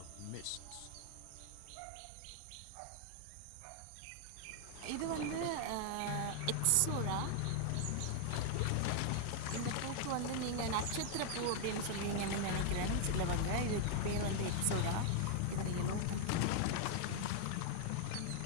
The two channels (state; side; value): different; both; correlation 0.00